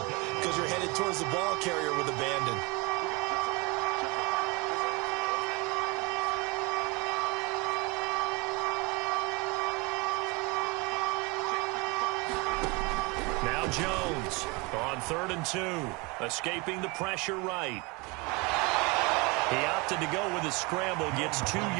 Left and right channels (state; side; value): quieter; left; 27.1 dB